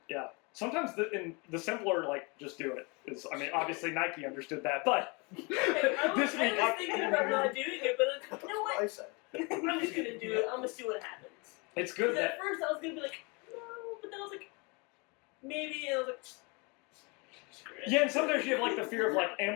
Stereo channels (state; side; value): quieter; right; 29.7 dB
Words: yeah, sometimes the simpler, like, just do it is, I mean, obviously Nike understood that, but I was this week, thinking about not doing it, but you know what? I said. I'm just going to do it. I'm going to see what happens. it's good Because that, at first I was going to be like, no, but then I was like, maybe, and I was like, screw it. yeah, and sometimes you have like the fear of like,